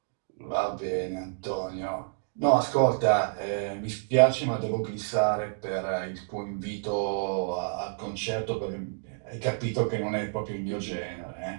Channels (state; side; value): silent; left; digital silence